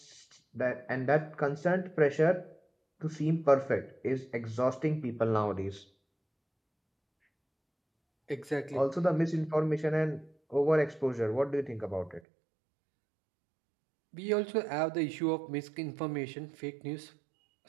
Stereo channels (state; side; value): drops out; left; at 12.2 s